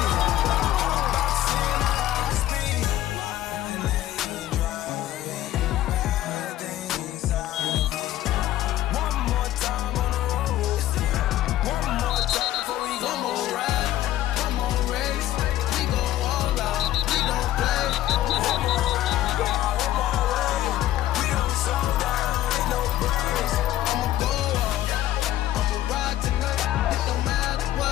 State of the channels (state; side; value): quieter; right; 13.8 dB